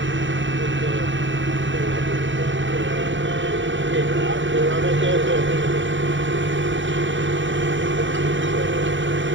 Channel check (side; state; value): left; late; 0.55 ms